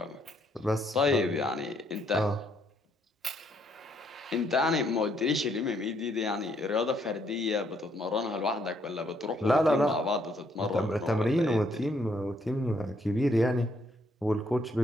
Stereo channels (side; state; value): both; normal; correlation 0.71